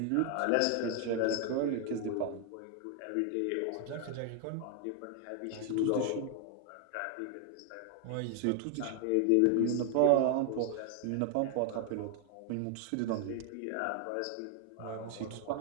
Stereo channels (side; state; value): both; different; correlation 0.00